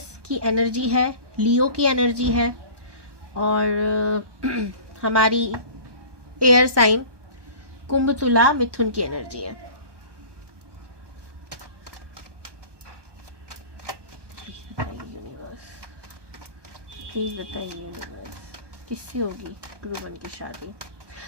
की एनर्जी है, लियो की एनर्जी है, और हमारी एयर साइन कुंभ, तुला, मिथुन की एनर्जी है। प्लीज बताइए यूनिवर्स, किससे होगी ध्रुवन की शादी?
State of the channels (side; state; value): left; late; 1.2 ms